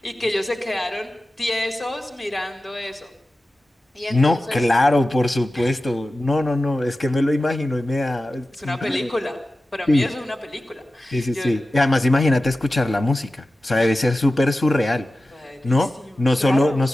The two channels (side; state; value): both; normal; correlation 0.94